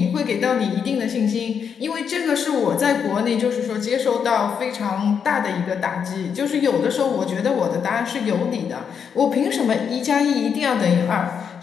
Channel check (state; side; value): quieter; right; 7.1 dB